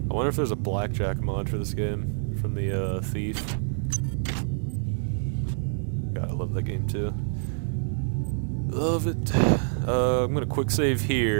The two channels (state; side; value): silent; left; digital silence